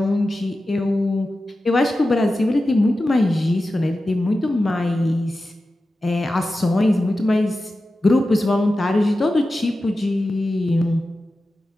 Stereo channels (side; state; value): both; normal; correlation 0.93